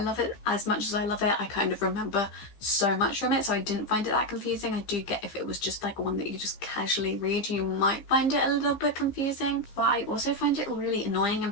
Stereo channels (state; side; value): late; right; 15 ms